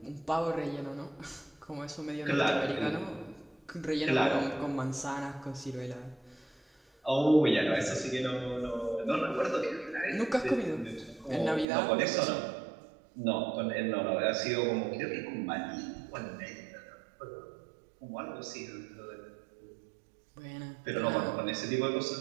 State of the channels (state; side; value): drops out; left; at 11.7 s